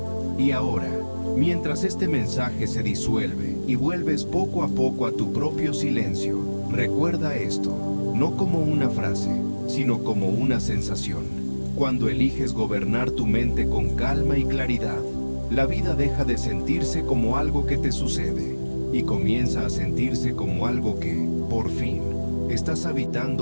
Y ahora, mientras este mensaje se disuelve y vuelves poco a poco a tu propio silencio, recuerda esto, no como una frase, sino como una sensación. Cuando eliges gobernar tu mente con calma y claridad, la vida deja de sentirse como algo que te sucede y comienza a sentirse como algo que, por fin, estás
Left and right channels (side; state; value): both; inverted; correlation -1.00